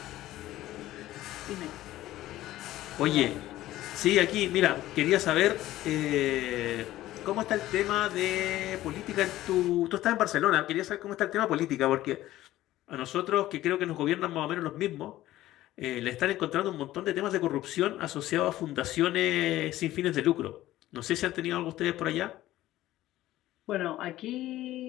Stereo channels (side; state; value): right; quieter; 15.1 dB